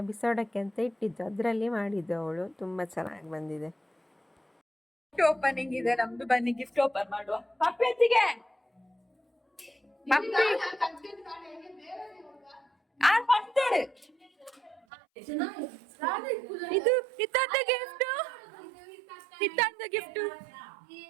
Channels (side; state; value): left; drops out; at 14.8 s